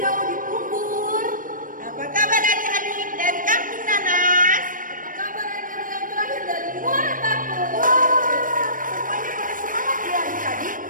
di Pumbur? Apa kabar adik-adik dari Kampung Nanas? Apa kabar adik-adik yang terakhir dari Muara Batu? Wah, semuanya pada semangat ya adik-adik.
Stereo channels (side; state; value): left; late; 0.40 ms